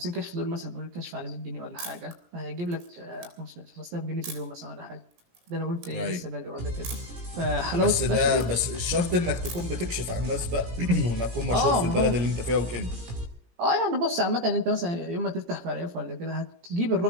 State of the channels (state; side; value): late; left; 17 ms